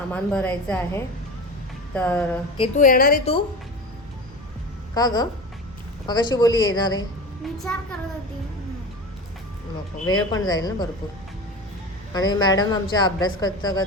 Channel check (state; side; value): normal; both; correlation 0.29